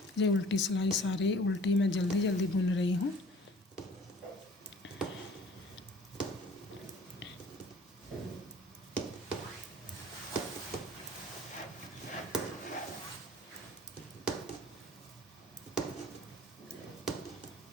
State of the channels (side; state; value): both; normal; correlation 0.50